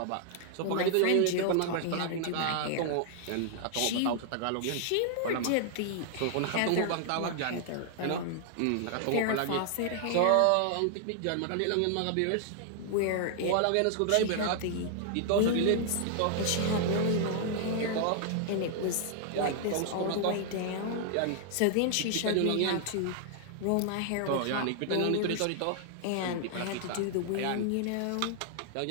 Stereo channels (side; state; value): both; different; correlation -0.01